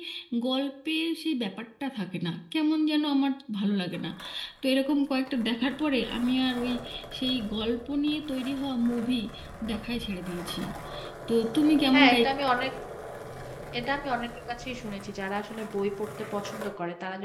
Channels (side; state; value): both; identical; correlation 1.00